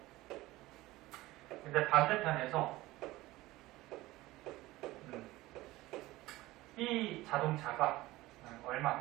근데 반대편에서 이 자동차가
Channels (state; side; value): quieter; left; 18.3 dB